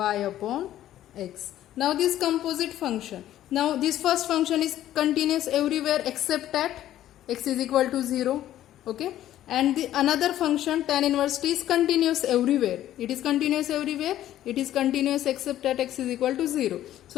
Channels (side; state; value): right; quieter; 12.7 dB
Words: upon x. Now this composite function. Now this first function is continuous everywhere except at x is equal to 0. Okay. And the another function tan inverse t is continuous everywhere. It is continuous everywhere. It is continuous except at x is equal to 0.